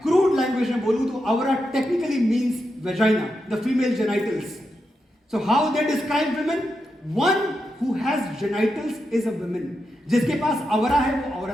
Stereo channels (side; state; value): both; normal; correlation 0.86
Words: क्रूड लैंग्वेज में बोलूं तो अवरा technically means vagina, the female genitals. So how they describe women? One who has genitals is a women. जिसके पास अवरा है वो